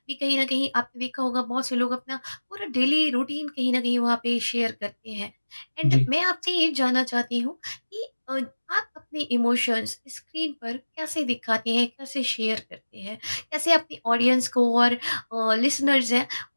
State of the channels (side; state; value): both; inverted; correlation -1.00